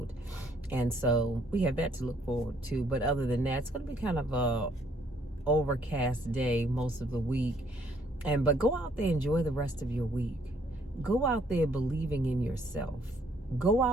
and so we have that to look forward to. But other than that, it's going to be kind of a overcast day most of the week. But go out there, enjoy the rest of your week. Go out there believing in yourself. Go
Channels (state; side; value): normal; both; correlation 0.66